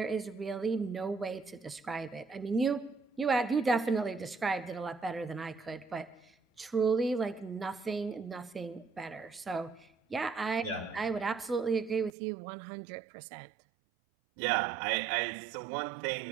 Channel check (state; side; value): drops out; left; at 12.1 s